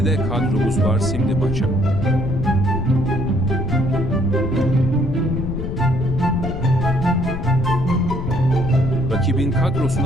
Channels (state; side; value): noise; left; rumble, 5 dB below the sound